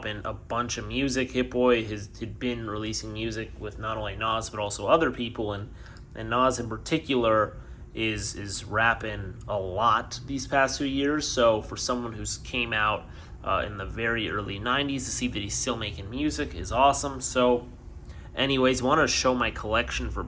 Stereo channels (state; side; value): identical; both; correlation 1.00